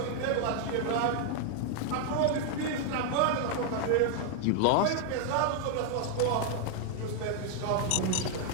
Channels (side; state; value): both; different; correlation 0.00